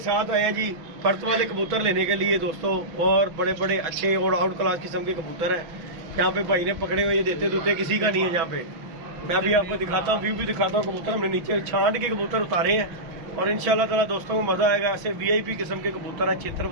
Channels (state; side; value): late; left; 6.0 ms